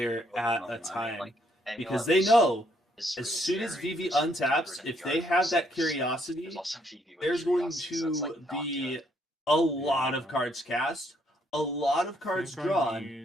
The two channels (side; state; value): both; normal; correlation 0.71